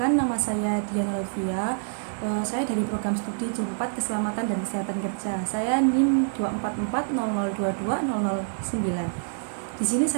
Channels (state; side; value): silent; left; digital silence